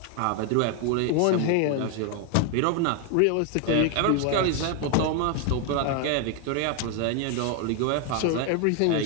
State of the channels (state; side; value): different; both; correlation 0.00